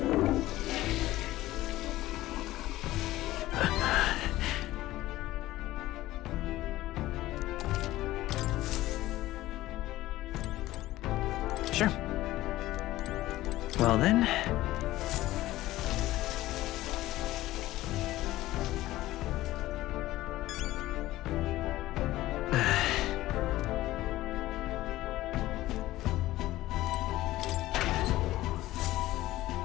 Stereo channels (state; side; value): quieter; right; 16.3 dB